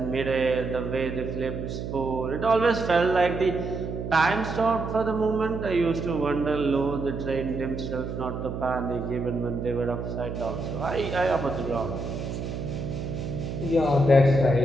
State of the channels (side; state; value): right; noise; hum, 5 dB below the sound